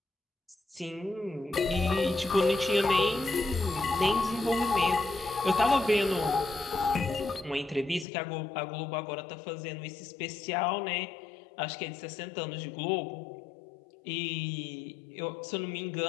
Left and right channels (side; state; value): right; drops out; at 8.1 s